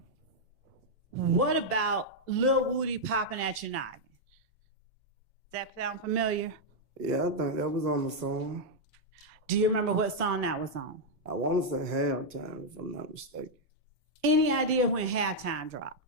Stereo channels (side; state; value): both; normal; correlation -0.03